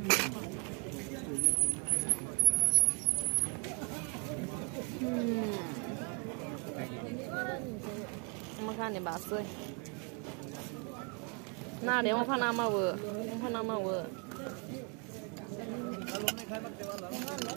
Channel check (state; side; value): quieter; left; 36.6 dB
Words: makan ni bahasa nah dia makan nama we